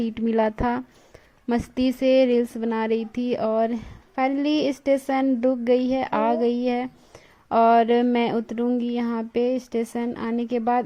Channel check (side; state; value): both; identical; correlation 1.00